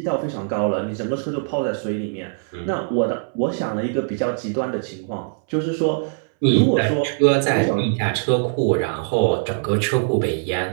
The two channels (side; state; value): left; silent; 63 dB below the other